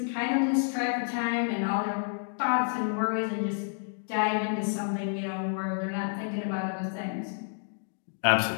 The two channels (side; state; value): right; silent; digital silence